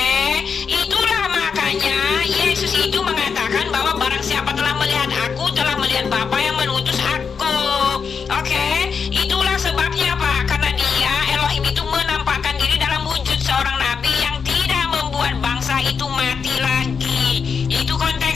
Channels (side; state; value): right; quieter; 6.0 dB